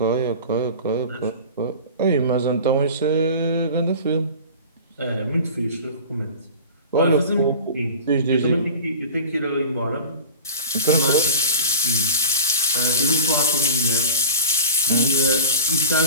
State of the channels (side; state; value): both; inverted; correlation -0.35